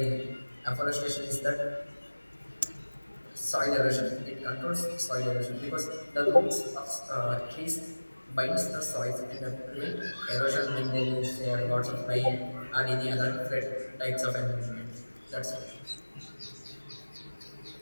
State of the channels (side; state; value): both; inverted; correlation -1.00